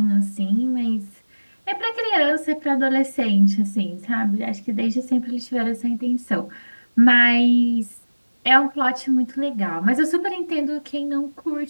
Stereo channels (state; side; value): inverted; both; correlation -1.00